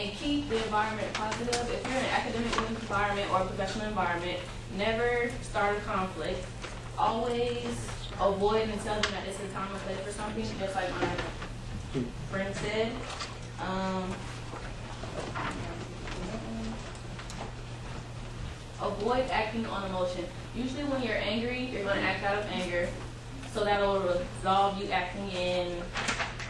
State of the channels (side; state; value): both; identical; correlation 1.00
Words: keep the environment positive. If you're in an academic environment or a professional environment, never start a conflict. Always avoid and tell them that this is time and place for something, just like my friend said. Avoid acting on emotion. Usually when you're angry, you're going to act out of anger, so that will resolve you acting in